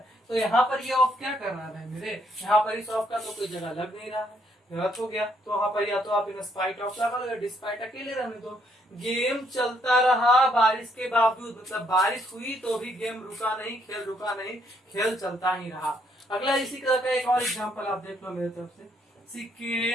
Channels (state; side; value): normal; both; correlation 0.71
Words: तो यहाँ पर ये ऑफ क्या कर रहा है मेरे? यहाँ पर इस ऑफ का तो कोई जगह लग नहीं रहा है, गलत हो गया। तो वहां पर या तो आप इन स्पाइट ऑफ लगा लो, डिस्पाइट अकेले रहने दो। गेम चलता रहा बारिश के बावजूद, मतलब बारिश हुई तो भी गेम रुका नहीं, खेल रुका नहीं, खेल चलता ही रहा। अगला इसी तरह का एक और एग्जांपल आप देख लो मेरे तरफ से। She